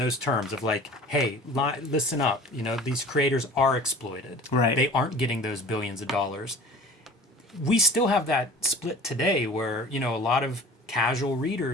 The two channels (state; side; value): normal; both; correlation 0.43